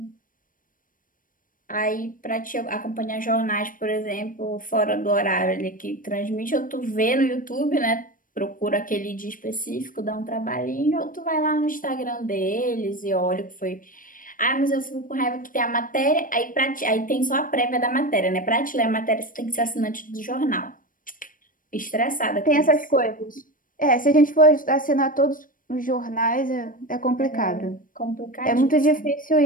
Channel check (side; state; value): right; late; 0.40 ms